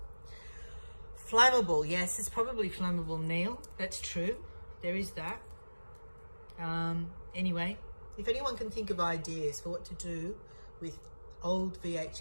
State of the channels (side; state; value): both; inverted; correlation -1.00